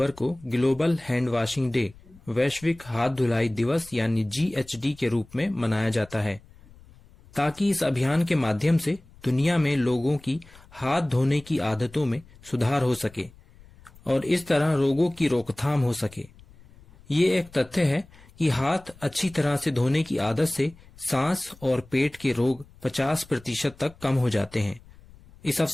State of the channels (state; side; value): noise; left; rumble, 24 dB below the sound